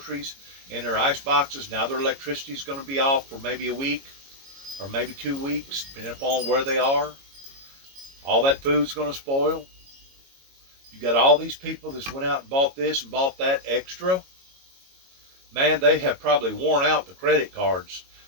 in their ice boxes. Now their electricity is going to be off for maybe a week or maybe 2 weeks, depending upon where they are. All that food's going to spoil. You got all these people that went out and bought this and bought that extra. Man, they have probably worn out the credit cards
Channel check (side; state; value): left; late; 22 ms